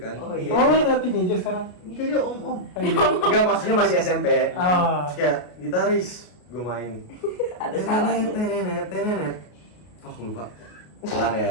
Oh, iya. Oh, lu udah teenager sekarang? Itu dia om. Oh, iya. Enggak, maksudnya masih SMP. Oh. Terus kayak gitaris gue main. Ada salahnya. Tenenet. Oh lupa. Pelan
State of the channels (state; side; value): late; right; 33 ms